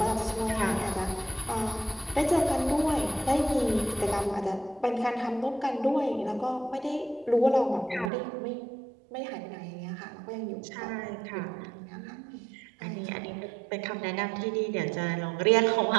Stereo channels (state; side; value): drops out; left; at 8.1 s